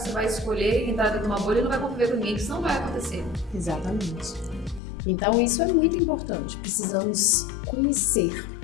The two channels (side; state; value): right; drops out; at 4.8 s